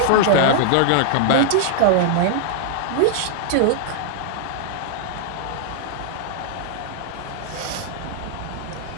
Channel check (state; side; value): different; both; correlation -0.01